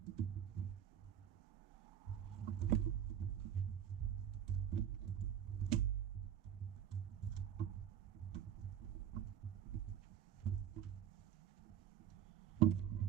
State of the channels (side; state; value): left; quieter; 9.9 dB